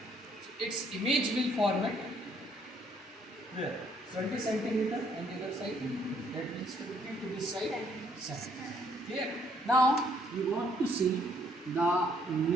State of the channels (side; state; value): both; normal; correlation 0.67